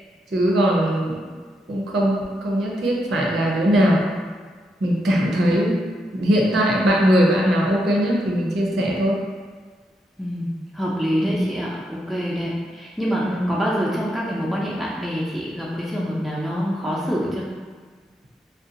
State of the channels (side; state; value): both; normal; correlation 0.81